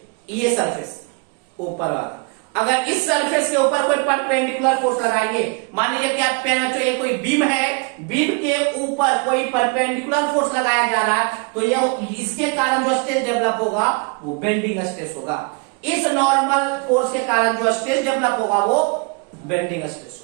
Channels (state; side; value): quieter; left; 31.5 dB